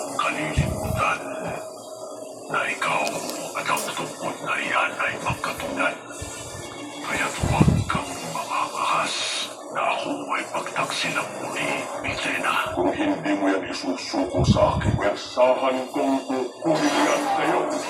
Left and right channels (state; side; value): identical; both; correlation 1.00